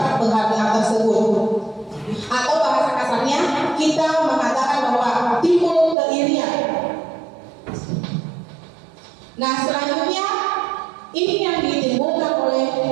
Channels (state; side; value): drops out; left; at 6.0 s